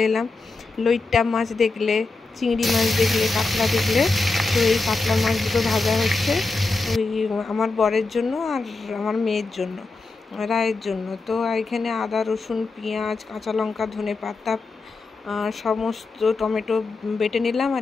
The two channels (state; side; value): quieter; right; 3.7 dB